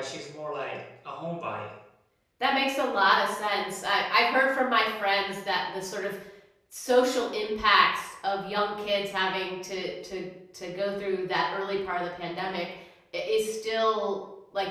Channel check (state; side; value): identical; both; correlation 1.00